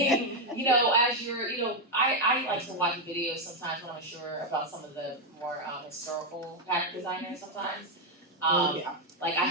as you're, I like to watch videos sometimes when I'm sure about some of the more historical pattern designers sometimes. Like I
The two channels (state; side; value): normal; both; correlation 0.03